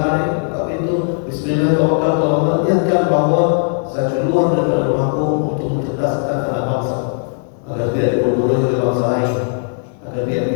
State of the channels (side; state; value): right; silent; digital silence